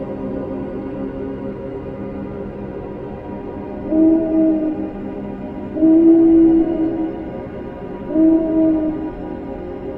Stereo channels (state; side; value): identical; both; correlation 1.00